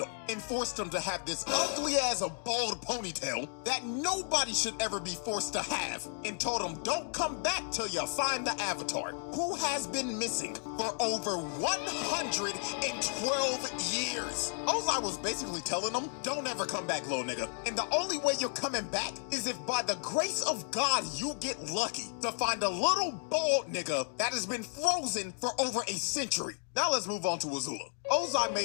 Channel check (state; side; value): silent; right; 56 dB below the other